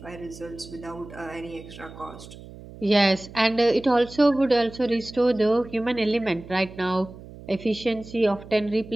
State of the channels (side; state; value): right; noise; hum, 17 dB below the sound